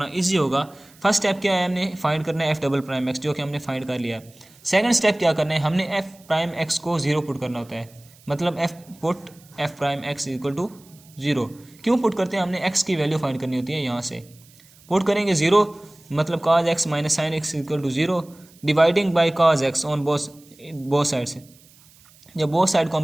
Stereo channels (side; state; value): right; noise; hiss, 27 dB below the sound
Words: इजी होगा। फर्स्ट स्टेप क्या है, हमने फाइंड करना है एफ डबल प्राइम एक्स, जो कि हमने फाइंड कर लिया। सेकंड स्टेप क्या करना है, हमने एफ प्राइम एक्स को 0 पुट करना होता है, मतलब f prime x equal to 0। क्यों पुट करते हैं, हमने एक्स की वैल्यू फाइंड करनी होती है। यहाँ से पुट करेंगे 0, मतलब cos x minus sine x equal to 0, dividing by cos x on both side से। जब बोथ साइड को